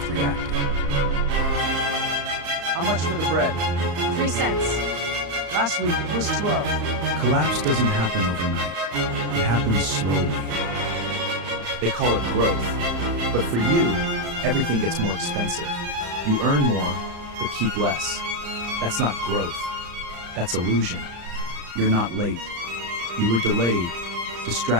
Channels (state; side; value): late; left; 35 ms